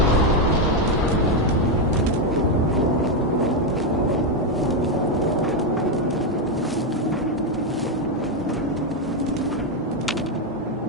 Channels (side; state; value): both; normal; correlation 0.04